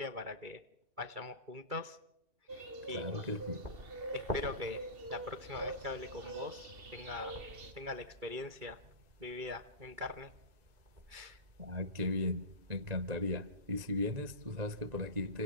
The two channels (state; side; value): late; left; 2.3 ms